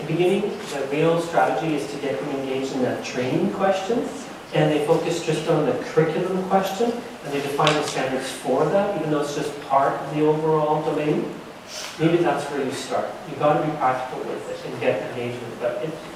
beginning, the real strategy is to get them engaged in that training question, and they focus just on the curriculum question, and they define the standards for that, even though it's just part of the overall domain. Maybe that's where you start. You've got to be practical with it and get engagement, but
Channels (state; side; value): identical; both; correlation 1.00